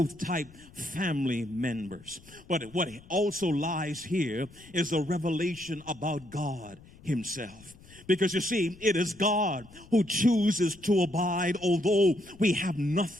family members. But what also lies here is a revelation about God himself. Because you see, it is God who chooses to abide, although we have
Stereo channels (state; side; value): noise; left; rumble, 23 dB below the sound